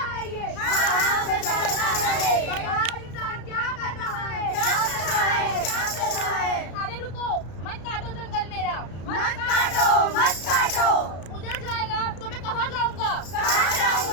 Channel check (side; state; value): right; late; 33 ms